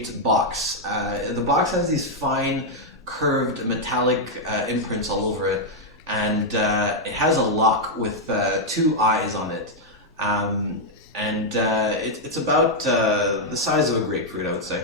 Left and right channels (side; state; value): both; normal; correlation -0.02